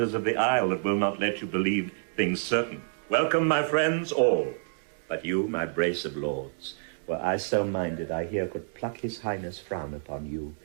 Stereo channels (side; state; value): left; silent; digital silence